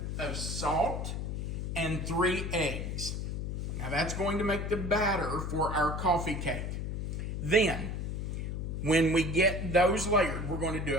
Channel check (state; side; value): noise; left; hum, 3 dB below the sound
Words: of salt. And 3 eggs. Now that's going to make the batter for our coffee cake. Then, when we get those layered, we're going to